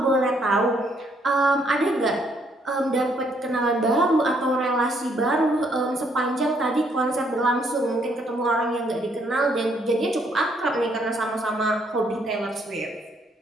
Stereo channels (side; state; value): both; normal; correlation 0.70